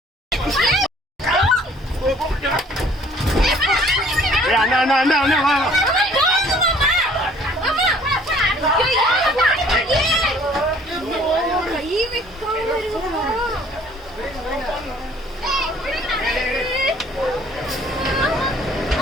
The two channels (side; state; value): both; normal; correlation 0.56